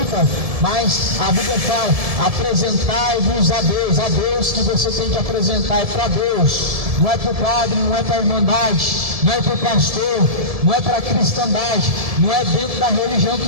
mas a Bíblia fala, apresentai-vos a Deus que você tem que apresentar é para Deus, não é para o padre, não é para a irmandade, não é para o pastor, não é para a cristandade, não é dentro da religião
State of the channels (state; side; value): late; left; 1.7 ms